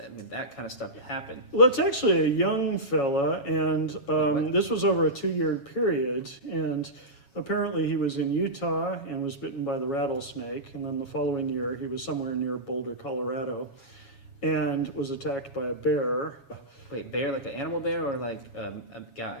I mean, that kind of stuff happened. Well, it's actually a young fella, and What? this was over a 2-year period. And apparently, he was in Utah and was bitten by the rattlesnake. And then the following year, he was somewhere near Boulder, Colorado, and was attacked by a bear. Wait, bear like an animal bear or like a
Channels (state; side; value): late; right; 7.2 ms